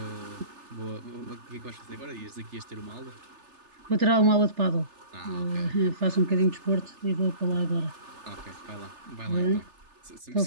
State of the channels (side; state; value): left; late; 3.3 ms